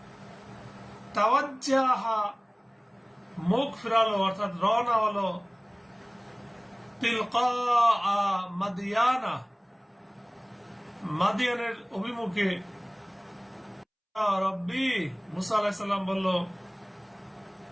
তাওয়াজ্জাহা মুখ ফিরালো, অর্থাৎ রওনা হলো, তিলকা মাদিয়ানা, মাদিয়ানের অভিমুখে, রব্বি, মুসা আলাইহিস সালাম বলল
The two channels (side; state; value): both; identical; correlation 1.00